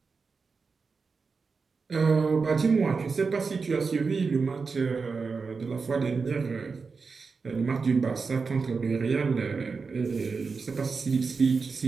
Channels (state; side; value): quieter; left; 4.8 dB